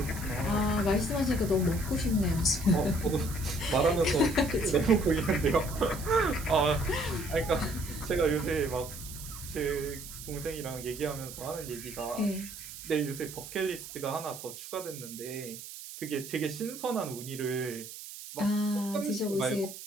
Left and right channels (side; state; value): right; noise; hiss, 12 dB below the sound